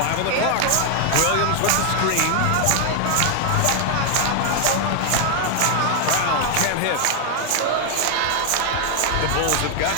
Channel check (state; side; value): different; both; correlation 0.00